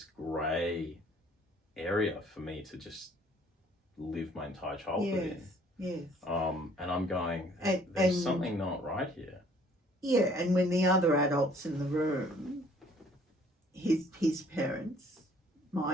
grey area for me to just live my entire childhood in. Yes. And I'm going, there's something not right here. Yeah, and when the other adults in the room, his parents,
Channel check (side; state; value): both; normal; correlation 0.58